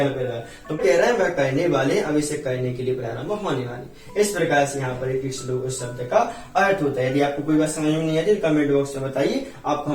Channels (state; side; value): identical; both; correlation 1.00